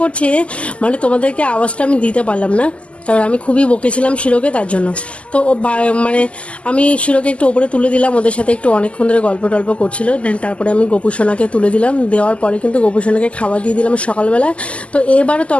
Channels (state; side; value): late; right; 0.058 ms